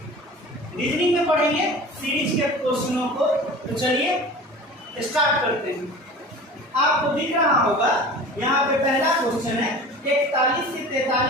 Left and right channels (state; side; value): normal; both; correlation 0.38